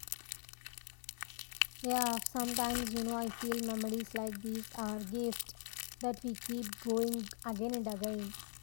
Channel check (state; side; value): silent; right; digital silence